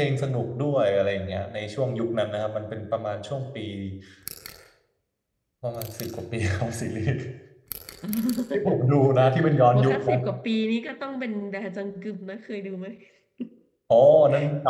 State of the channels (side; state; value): both; identical; correlation 1.00